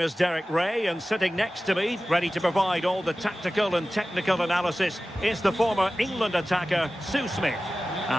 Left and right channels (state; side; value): normal; both; correlation 0.96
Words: is Derek Ray, and sitting next to me, ready to provide all the tactical and technical analysis, is the former England attacker, Sue Smith.